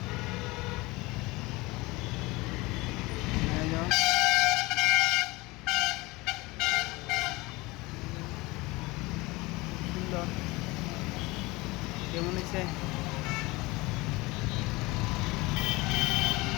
এই তো সুন্দর, কেমন হয়েছে?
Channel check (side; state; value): right; quieter; 22.5 dB